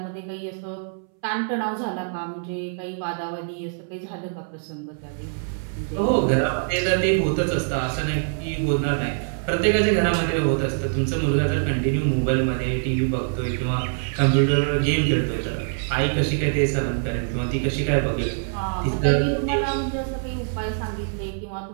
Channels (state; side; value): silent; left; 62 dB below the other